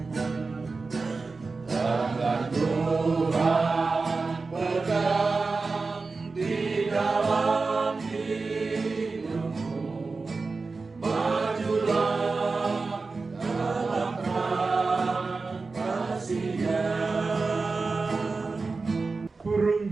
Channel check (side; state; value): left; quieter; 4.1 dB